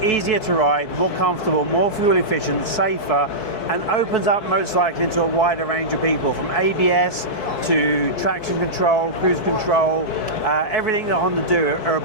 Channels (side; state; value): right; late; 4.6 ms